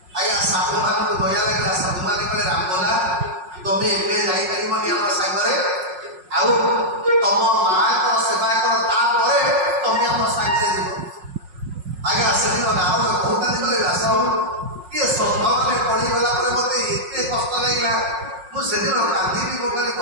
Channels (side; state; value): left; late; 5.5 ms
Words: ଆଜ୍ଞା ସାଧୁମାନଙ୍କୁ ଦୟା ଲାଗିଲା। ସାଧୁମାନେ କହିଲେ ରାମବୋଲା ତମେ ଏବେ ଯାଇପାରିବନି ଆମ ସାଙ୍ଗରେ, ଆଉ ତମ ମାଙ୍କର ସେବା କର, ତାପରେ ତମେ ଆମ ସାଙ୍ଗରେ ଯିବ। ଆଜ୍ଞା ସେଦିନ ନାରଦ କହୁଥାନ୍ତି କହିଲେ ବ୍ୟାସ କିଏ ସଭାମାନେ ପଡ଼ିଗଲା ପରେ ମତେ ଏତେ କଷ୍ଟ ଲାଗିଲା ମୁଁ ସେଦିନ କାନ୍ଦିବି। ମୁଁ କହିଲି